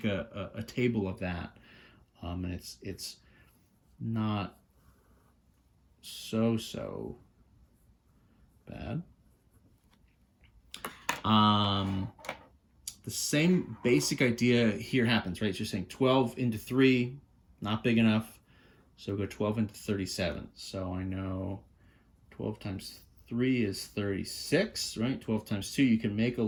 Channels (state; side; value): identical; both; correlation 1.00